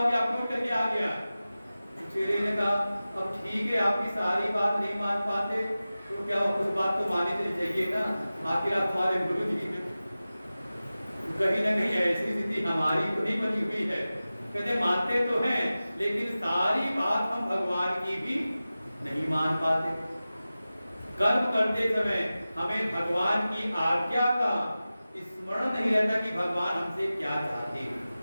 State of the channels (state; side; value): inverted; both; correlation -0.96